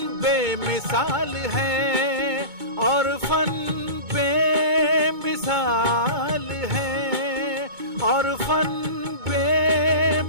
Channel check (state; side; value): late; left; 2.2 ms